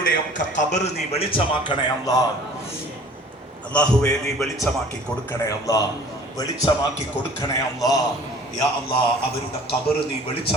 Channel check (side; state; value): both; normal; correlation 0.49